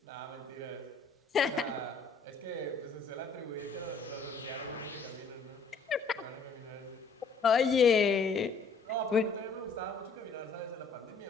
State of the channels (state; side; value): quieter; right; 4.5 dB